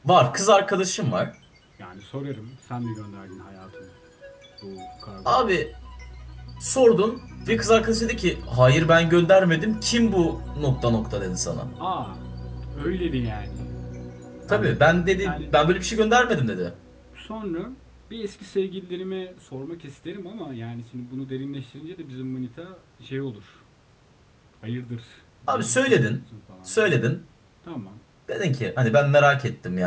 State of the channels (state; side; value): identical; both; correlation 1.00